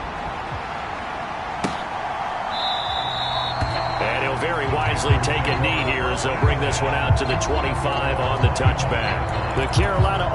easily take a knee here as they'll bring this one out to the 25 on the touchback. The Carolina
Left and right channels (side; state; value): both; identical; correlation 1.00